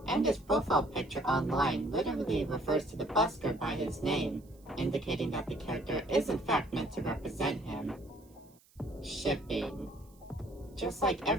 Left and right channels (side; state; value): right; noise; hiss, 30 dB below the sound